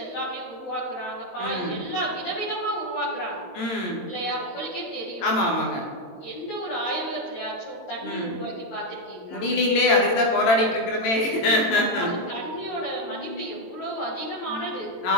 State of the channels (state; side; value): late; right; 22 ms